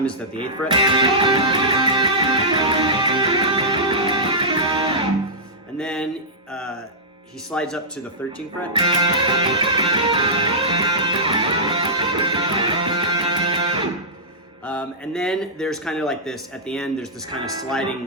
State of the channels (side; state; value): both; normal; correlation -0.14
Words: is at the 8th fret. And then he slides up to the 13th fret. And then there's kind of like this, at the end, there's this kind of